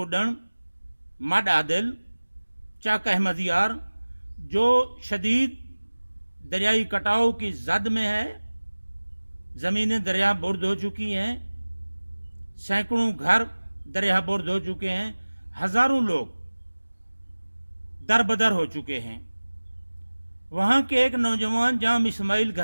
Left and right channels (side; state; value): both; inverted; correlation -1.00